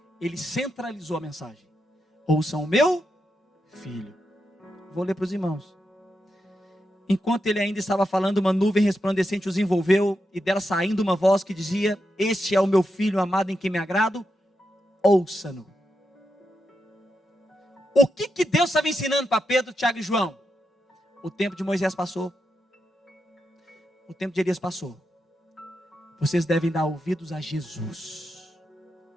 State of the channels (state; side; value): normal; both; correlation 0.86